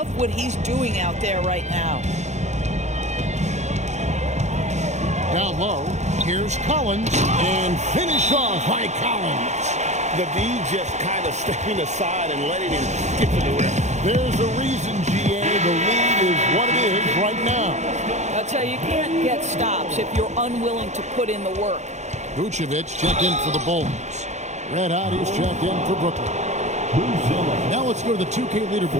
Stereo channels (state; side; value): late; left; 0.33 ms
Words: what he's doing out there right now. Down low. Here's Collins. And finished off by Collins. The D just kind of stepping aside and letting him get to the rim. There's a reason, GA. The lead is what it is right now. I'll tell you, you can't get stops if you're unwilling to put in the work. Vucevic checked in for the Bulls. Red Hot is checked in for Brooklyn. Now let's go to the 2K